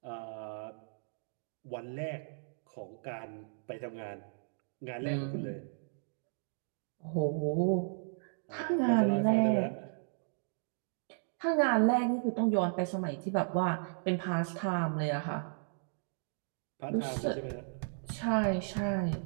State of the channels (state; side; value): silent; left; digital silence